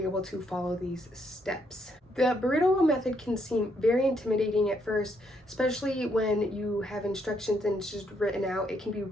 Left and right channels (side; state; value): both; normal; correlation 0.74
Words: able to follow these steps. The burrito roll method can seem very intimidating at first, especially when you have instructions and it's just written out. It can be